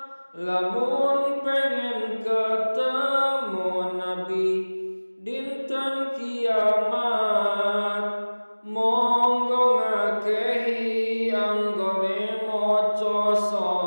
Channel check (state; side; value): inverted; both; correlation -1.00